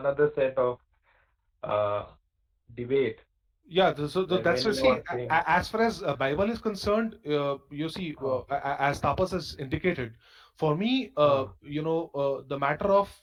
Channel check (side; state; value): both; identical; correlation 1.00